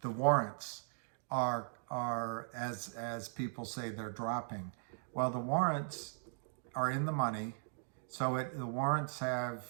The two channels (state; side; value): silent; left; digital silence